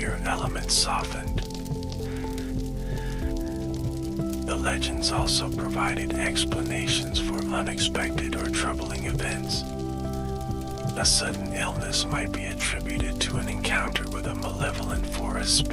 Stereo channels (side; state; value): both; identical; correlation 1.00